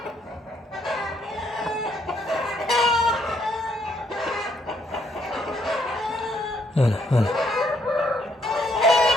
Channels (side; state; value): both; normal; correlation 0.71